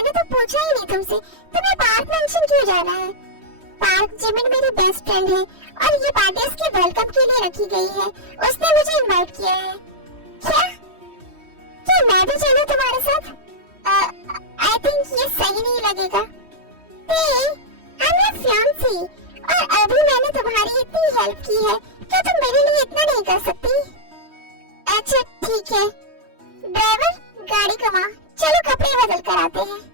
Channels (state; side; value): late; left; 3.1 ms